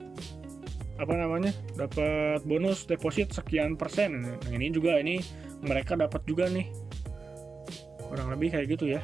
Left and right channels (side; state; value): left; quieter; 4.4 dB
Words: dapat bonus deposit sekian persen. Nah, ini juga, ini mereka dapat juga nih, kurang lebih kayak gitu